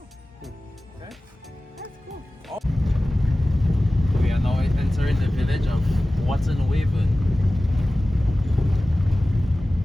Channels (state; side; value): normal; both; correlation 0.97